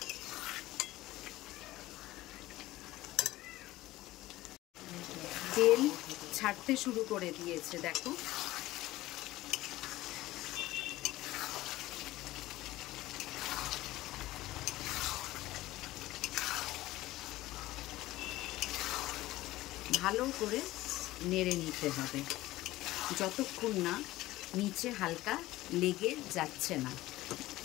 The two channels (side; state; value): right; quieter; 17.1 dB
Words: তেল ছাড়তে শুরু করে দিয়েছে, দেখো। ভালো করে নেড়ে নিতে হবে যতক্ষণ না নিচে হালকা লেগে যাচ্ছে না।